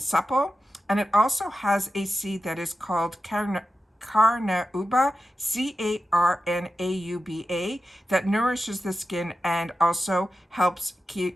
And it also has a seed that is called Carnauba, Carnauba, that nourishes the skin and also helps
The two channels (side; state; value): both; normal; correlation 0.91